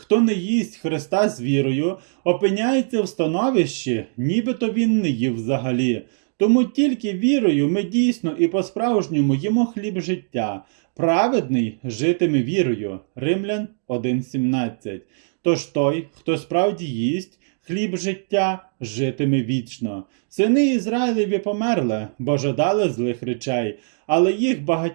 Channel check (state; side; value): silent; left; digital silence